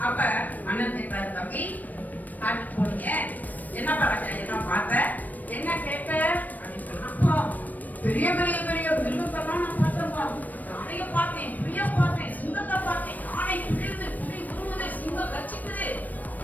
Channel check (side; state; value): right; late; 0.082 ms